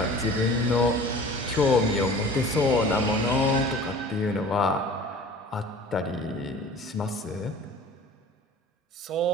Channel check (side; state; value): both; normal; correlation 0.43